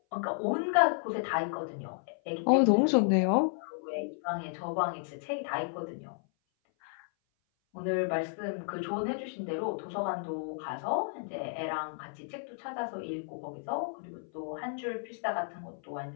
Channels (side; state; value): right; silent; 56 dB below the other